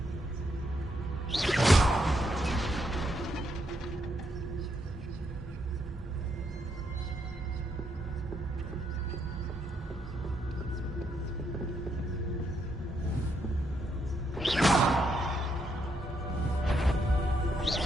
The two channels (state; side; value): normal; both; correlation 0.77